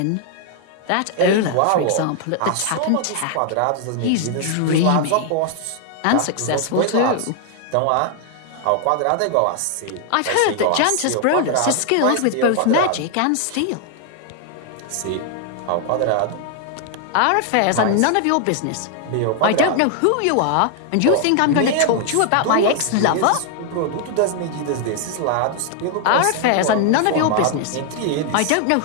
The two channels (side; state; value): both; different; correlation 0.00